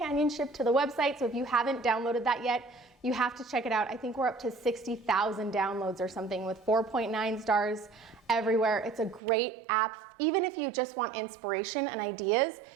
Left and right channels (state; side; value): drops out; left; at 9.2 s